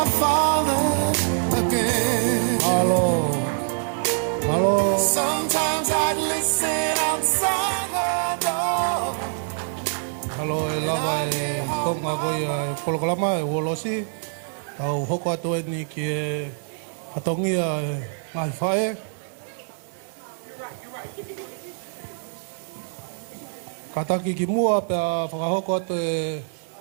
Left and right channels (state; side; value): silent; left; digital silence